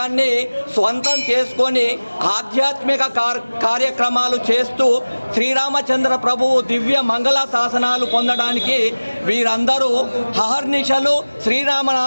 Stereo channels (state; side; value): inverted; both; correlation -1.00